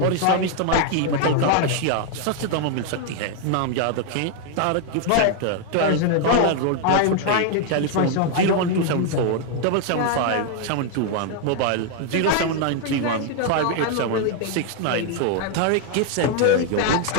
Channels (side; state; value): both; different; correlation 0.00